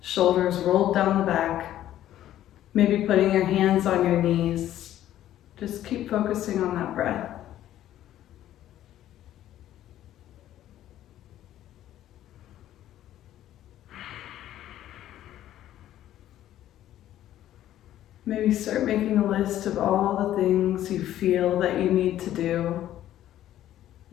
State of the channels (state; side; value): quieter; right; 12.6 dB